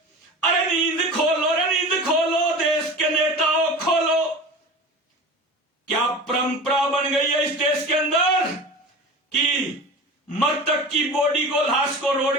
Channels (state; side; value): normal; both; correlation 0.34